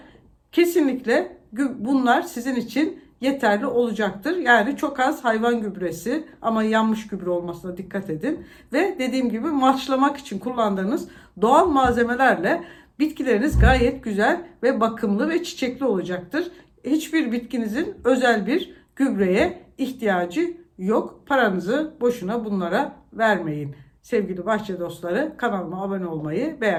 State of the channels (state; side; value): identical; both; correlation 1.00